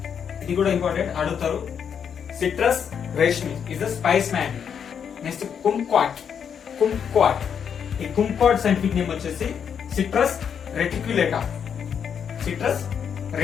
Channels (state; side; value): quieter; right; 7.6 dB